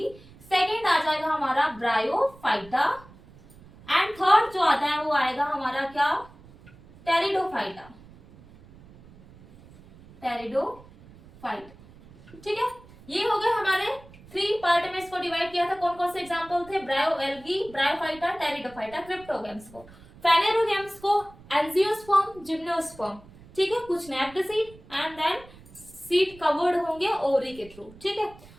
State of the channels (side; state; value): right; noise; rumble, 22 dB below the sound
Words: सेकेंड आ जाएगा हमारा ब्रायोफाइटा एंड थर्ड जो आता है वो आएगा हमारा क्या, टेरिडोफाइटा। टेरिडोफाइटा। ठीक है, ये हो गए हमारे 3 पार्ट में इसको डिवाइड किया था। कौन कौन से एग्जांपल थे, ब्रायो एल्गी, ब्रायोफाइटा, टेरिडोफाइटा। क्रिप्टोगेम्स को, फेनेरोगेम्स को एंजियोस्पर्म, जिम्नोस्पर्म। ठीक है, कुछ naked seed and then seed covered होंगे ओवरी के थ्रू। ठीक है,